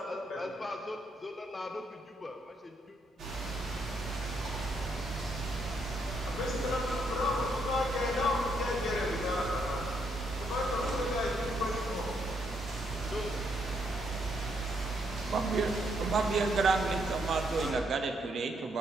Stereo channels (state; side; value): normal; both; correlation 0.75